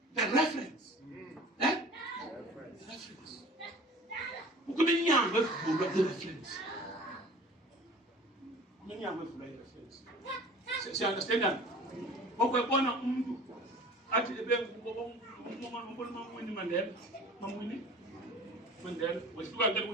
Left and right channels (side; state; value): both; normal; correlation 0.43